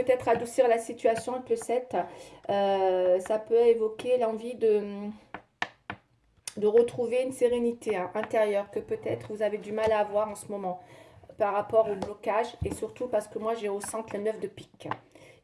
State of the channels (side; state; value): both; identical; correlation 1.00